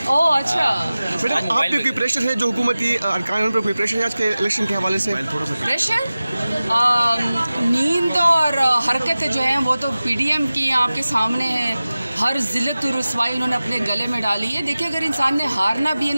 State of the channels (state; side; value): inverted; both; correlation -0.96